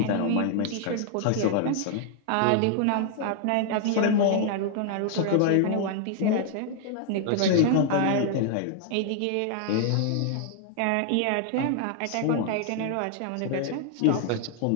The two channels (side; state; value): both; different; correlation 0.00